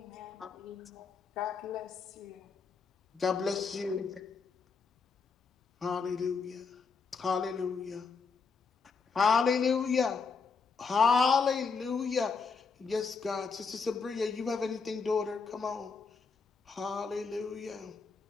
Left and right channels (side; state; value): right; quieter; 5.0 dB